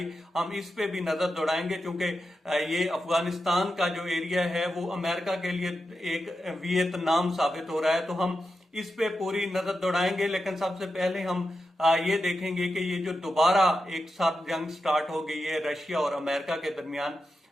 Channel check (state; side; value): normal; both; correlation 0.89